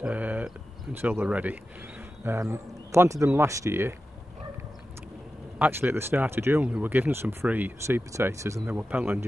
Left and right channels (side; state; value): both; normal; correlation 0.92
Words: until they're ready. Planted them last year. Actually at the start of June we were given some free seed potatoes, and they were Pentland